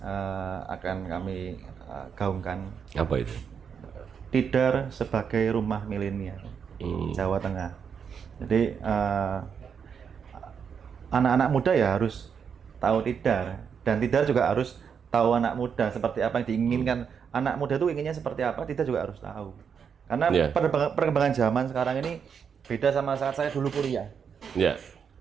akan kami gaungkan. Apa itu? Tidar sebagai rumah milenial Jawa Tengah. Jadi anak-anak muda ya harus tahu Tidar, dan Tidar juga harus tahu anak muda seperti apa yang diinginkan. Anak muda itu inginnya seperti apa, Tidar juga harus tahu. Karena perkembangan zaman sekarang ini beda sama saat saya dulu kuliah.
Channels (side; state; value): left; quieter; 6.9 dB